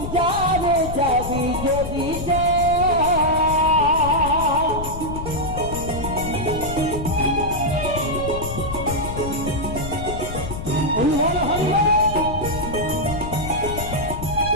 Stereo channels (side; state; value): left; noise; rumble, 7 dB below the sound